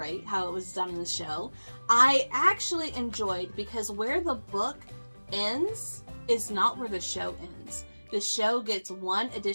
how it was done in the show. I actually enjoyed, because where the book ends is not where the show ends. The show gets one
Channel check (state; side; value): inverted; both; correlation -1.00